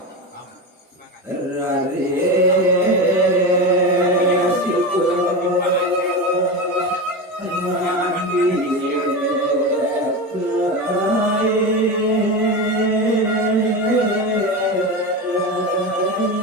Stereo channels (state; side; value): normal; both; correlation 0.21